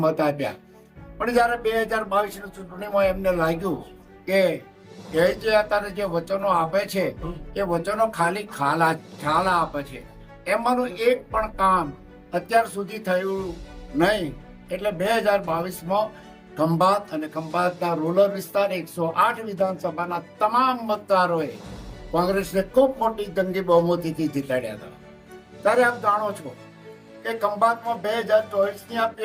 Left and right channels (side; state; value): both; identical; correlation 1.00